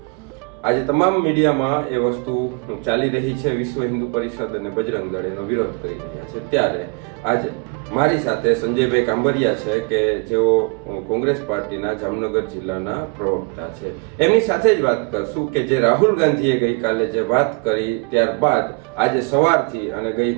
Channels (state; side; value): quieter; left; 32.1 dB